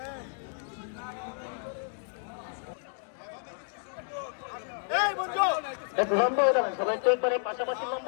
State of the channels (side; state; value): right; silent; digital silence